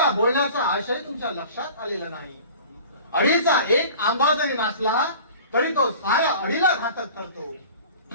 बोलण्याचा आशय तुमच्या लक्षात आलेला नाही. अडीचा एक आंबा जरी नाचला तरी तो साऱ्या अडीला घातक ठरतो.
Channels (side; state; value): both; inverted; correlation -0.43